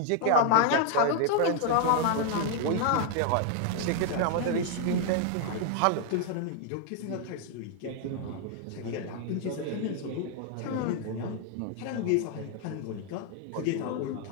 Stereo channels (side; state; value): both; different; correlation 0.00